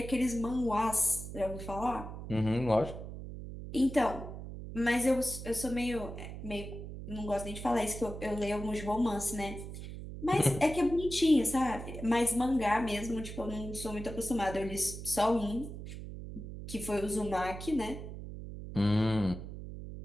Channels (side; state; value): right; noise; hum, 9 dB below the sound